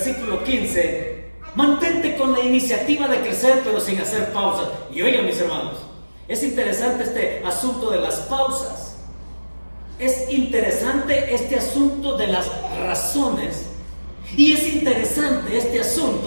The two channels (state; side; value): inverted; both; correlation -1.00